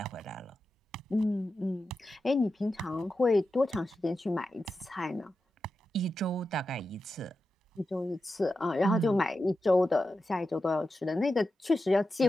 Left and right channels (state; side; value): normal; both; correlation 0.91